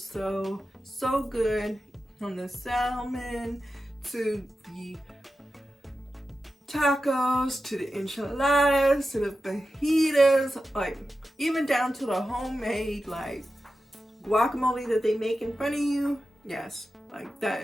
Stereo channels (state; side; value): normal; both; correlation 0.92